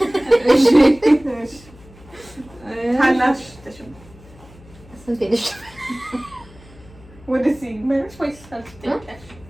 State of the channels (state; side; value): noise; left; hum, 23 dB below the sound